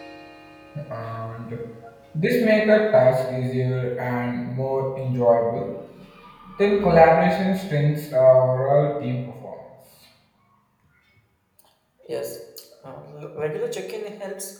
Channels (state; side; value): identical; both; correlation 1.00